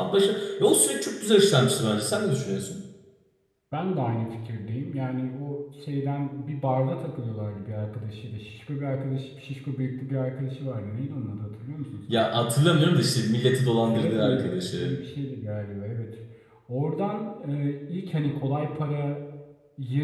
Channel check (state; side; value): identical; both; correlation 1.00